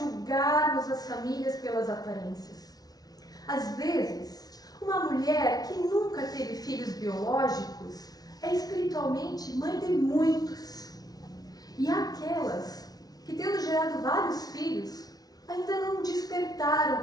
as famílias pelas aparências. Às vezes, uma mulher que nunca teve filhos biológicos é espiritualmente mãe de muitos. E há aquelas que, tendo gerado vários filhos, ainda não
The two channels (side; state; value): right; late; 0.19 ms